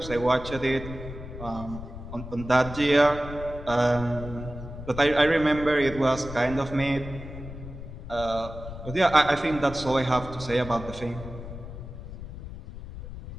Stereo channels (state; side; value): noise; left; rumble, 11 dB below the sound